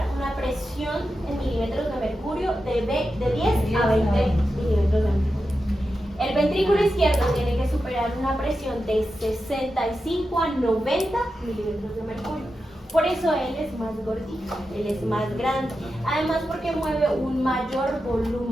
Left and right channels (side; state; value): both; normal; correlation 0.90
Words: una presión en milímetros de mercurio de 10 a 20 milímetros de mercurio. El ventrículo izquierdo tiene que superar una presión de 65 a 90 milímetros de mercurio. Por eso él es más gordito, él es más grande. Además porque mueve un mayor